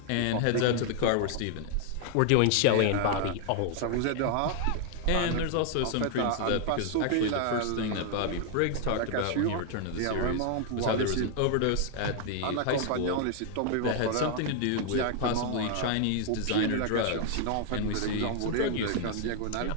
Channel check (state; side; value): different; both; correlation 0.00